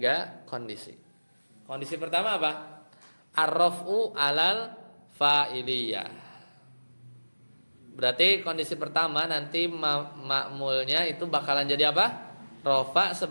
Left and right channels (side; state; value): both; inverted; correlation -1.00